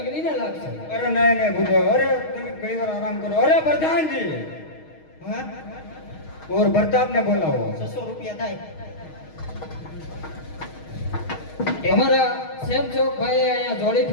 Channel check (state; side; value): late; right; 6.4 ms